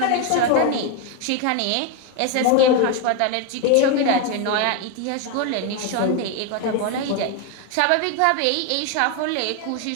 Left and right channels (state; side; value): different; both; correlation 0.01